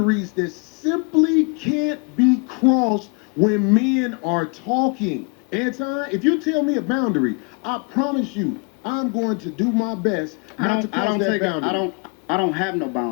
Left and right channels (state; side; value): quieter; right; 33.5 dB